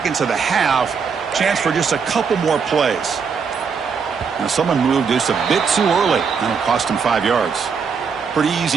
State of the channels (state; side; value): quieter; left; 5.9 dB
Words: of the half. Chance for just a couple more plays. Now someone moved just a bit too early. That'll cost him 5 yards. Pretty